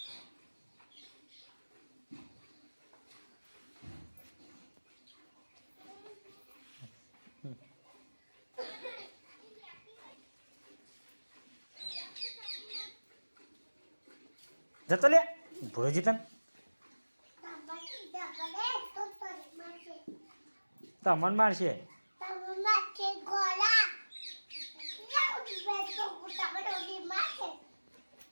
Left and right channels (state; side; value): inverted; both; correlation -1.00